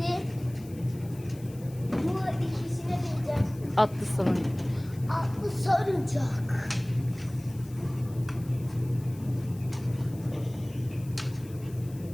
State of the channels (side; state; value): left; noise; hiss, 23 dB below the sound